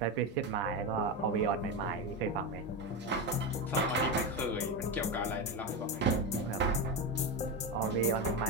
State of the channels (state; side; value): normal; both; correlation 0.14